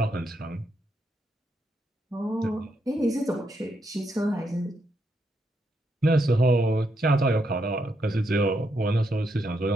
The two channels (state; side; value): normal; both; correlation 0.80